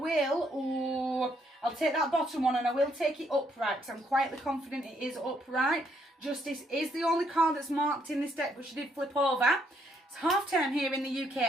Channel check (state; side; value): normal; both; correlation 0.72